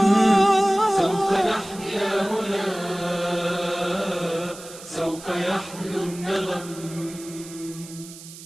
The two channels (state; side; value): noise; right; hiss, 16 dB below the sound